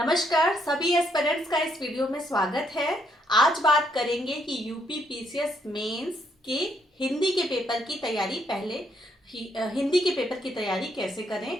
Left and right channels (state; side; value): normal; both; correlation 0.73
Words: सभी एस्पिरेंट्स का इस वीडियो में स्वागत है। आज बात करेंगे कि यूपी पीसीएस मेंस के हिंदी के पेपर की तैयारी हिंदी के पेपर की तैयारी कैसे करें।